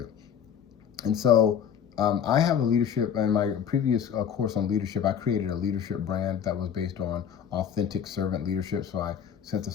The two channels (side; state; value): right; quieter; 8.3 dB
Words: And so I have a leadership, in my previous course on leadership, I created a leadership brand that was based on authentic servant leadership. So I